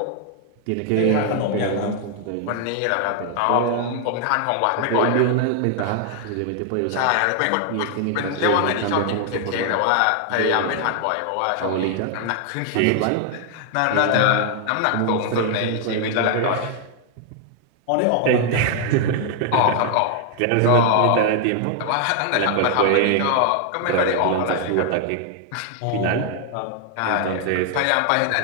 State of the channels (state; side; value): different; both; correlation 0.00